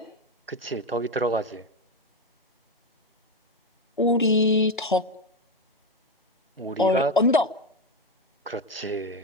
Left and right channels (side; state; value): both; normal; correlation 0.13